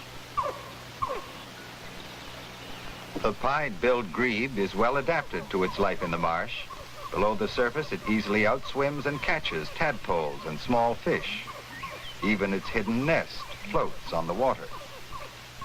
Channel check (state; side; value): identical; both; correlation 1.00